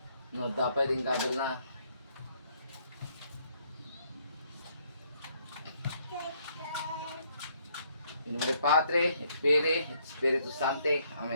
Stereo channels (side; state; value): both; inverted; correlation -0.69